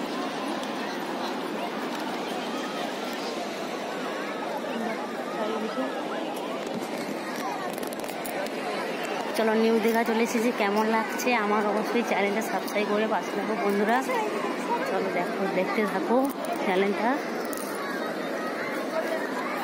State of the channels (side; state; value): both; identical; correlation 1.00